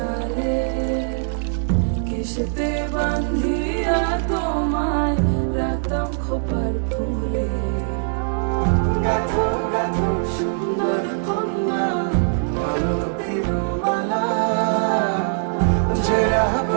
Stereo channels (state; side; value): silent; left; digital silence